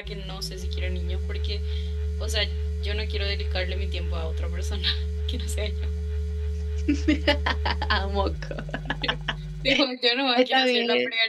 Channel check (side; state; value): both; identical; correlation 1.00